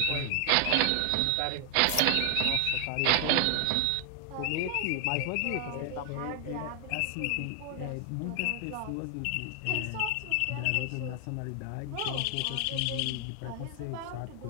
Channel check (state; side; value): different; both; correlation 0.00